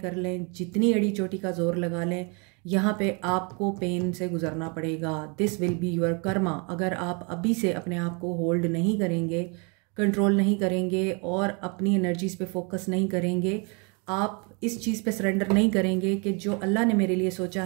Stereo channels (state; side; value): quieter; left; 33.4 dB